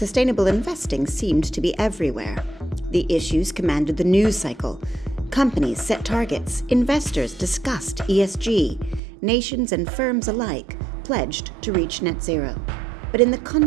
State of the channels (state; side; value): drops out; left; at 9.0 s